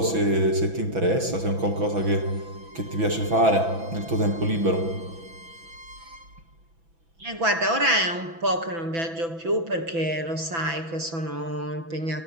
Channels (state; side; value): late; left; 6.0 ms